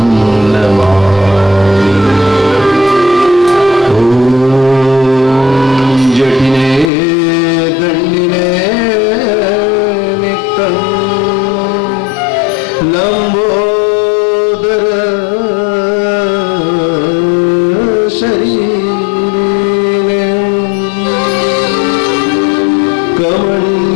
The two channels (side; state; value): right; drops out; at 6.9 s